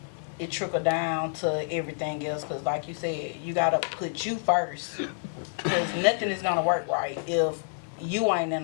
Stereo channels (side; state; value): right; silent; digital silence